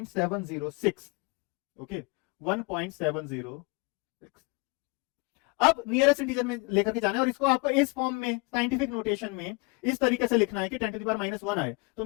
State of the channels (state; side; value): quieter; right; 28.4 dB